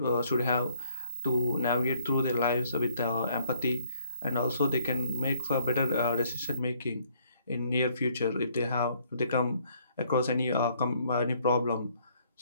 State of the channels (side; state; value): both; inverted; correlation -0.65